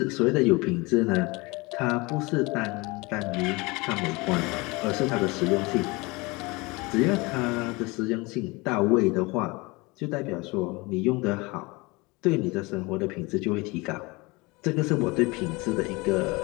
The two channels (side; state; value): right; quieter; 24.8 dB